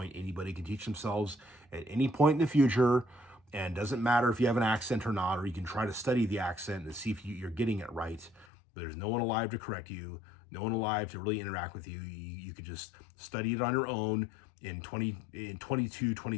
anybody can teach themselves at any point in the future, and doesn't matter if you have an accent or not, or you can try to study the accent and see if you're getting it right, but there's no one alive to correct you, no one alive to really interact with you. You could just study it on your own in 22,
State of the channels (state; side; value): drops out; right; at 8.5 s